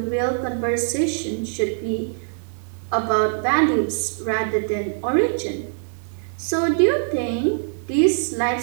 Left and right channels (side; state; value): left; silent; digital silence